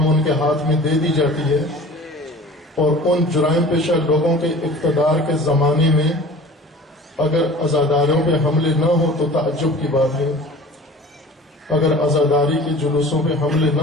ان کے ہاتھ میں دے دی جاتی ہے، اور ان جرائم پیشہ لوگوں کے اقتدار کے زمانے میں اگر عزاداریوں پہ حملے نہ ہو تو تعجب کی بات ہے، اگر عزاداری کے جلوسوں پہ حملے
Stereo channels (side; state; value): both; normal; correlation 0.43